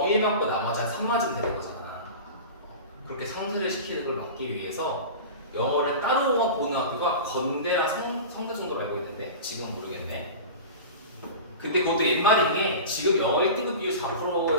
1 맞고 나머지 한 3 맞으면 되는 거잖아. 그렇게 상쇄를 시키는 걸 막기 위해서 영어를 따로 보는 학교가 건대랑 성대 정도로 알고 있는데 지금은 모르겠네. 근데 그것도 옛말인 게 지금 영어 1등급 비율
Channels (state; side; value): inverted; both; correlation -0.31